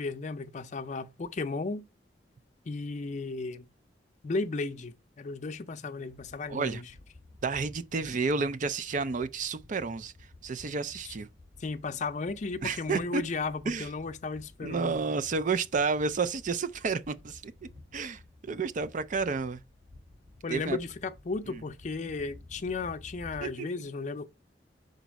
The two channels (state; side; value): normal; both; correlation 0.26